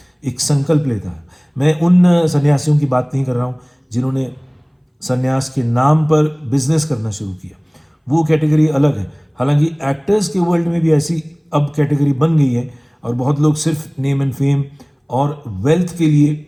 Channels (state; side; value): identical; both; correlation 1.00